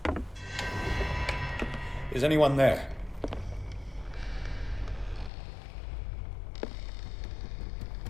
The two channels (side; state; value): right; drops out; at 5.3 s